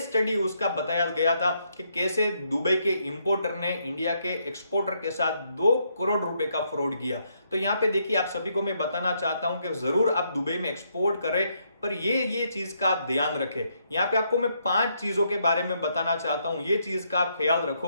स्टडी उसका बताया गया था कि कैसे दुबई के इंपोर्टर ने इंडिया के एक्सपोर्टर के साथ 2 करोड़ रुपए का फ्रॉड किया। तो यहाँ पे देखिए, आप सभी को मैं बताना चाहता हूं कि जरूर आप दुबई में एक्सपोर्ट करें, पर ये चीज का आप ध्यान रखें। यहाँ पे आपको मैं 5 चीजों के बारे में बताना चाहता हूं, ये चीज का आप ख्याल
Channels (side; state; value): both; inverted; correlation -0.75